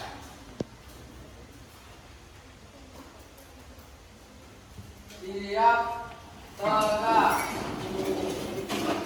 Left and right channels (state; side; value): identical; both; correlation 1.00